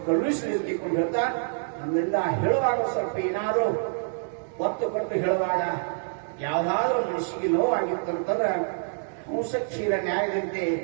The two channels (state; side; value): silent; left; digital silence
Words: ಕರುಣಿಸಲಿ ತಿಳ್ಕೊಂಡು ಹೇಳ್ತಾ ನಮ್ಮಿಂದ ಹೇಳುವಾಗ ಸ್ವಲ್ಪ ಏನಾದರೂ ಒತ್ತು ಕೊಟ್ಟು ಹೇಳುವಾಗ ಯಾವ್ದಾದ್ರೂ ಮನಸ್ಸಿಗೆ ನೋವಾಗಿತ್ತಂತಂದ್ರೆ ಹಂಸ ಕ್ಷೀರ ನ್ಯಾಯದಂತೆ